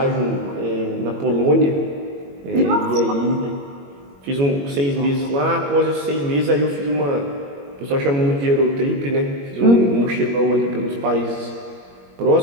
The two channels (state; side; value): late; left; 21 ms